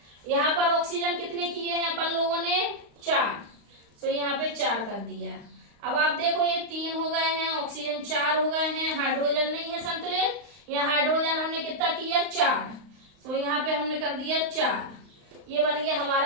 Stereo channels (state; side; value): late; left; 35 ms